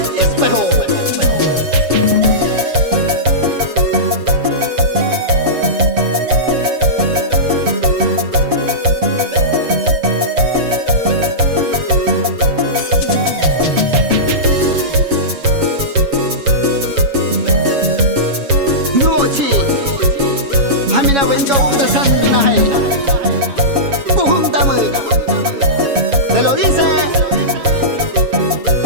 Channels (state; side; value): late; left; 7.2 ms